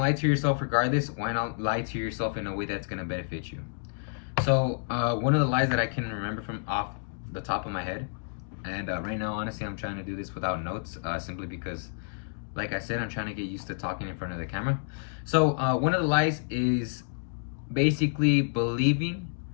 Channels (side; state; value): right; silent; digital silence